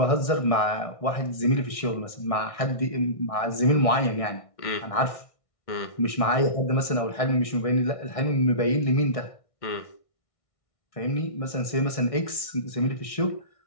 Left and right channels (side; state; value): right; late; 1.6 ms